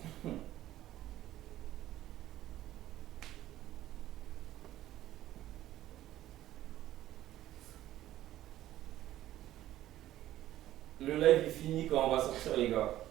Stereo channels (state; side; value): quieter; left; 13.9 dB